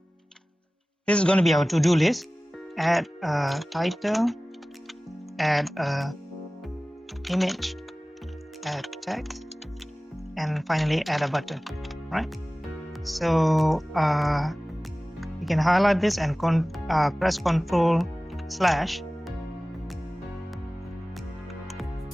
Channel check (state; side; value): normal; both; correlation 0.98